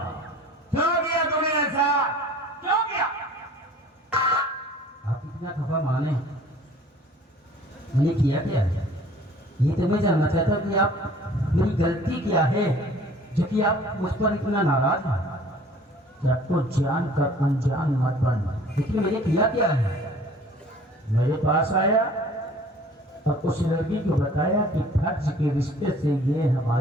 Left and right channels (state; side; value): normal; both; correlation 0.51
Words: क्यों किया तूने ऐसा? क्यों किया? आप इतना खफा माने, मैंने किया क्या है? ये तो मैं जानना चाहता कि आप मेरी गलती क्या है जो कि आप मुझ पर इतना नाराज हैं? क्या तो जान कर अनजान मत बन, लेकिन मैंने किया क्या है? मेरे पास आया और उस लड़की को बताया कि फर्ज के रिश्ते से ये